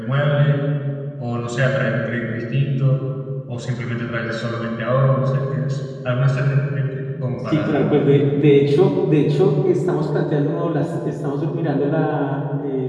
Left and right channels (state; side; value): identical; both; correlation 1.00